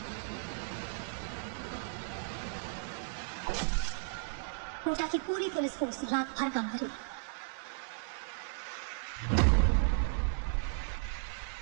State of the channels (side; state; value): left; silent; digital silence